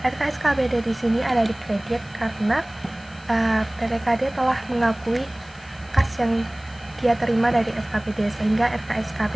RKSKPD di sini ada di kredit karena PPKD telah mengakui kas yang dia terima dari SKPD, sehingga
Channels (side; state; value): left; noise; hiss, 26 dB below the sound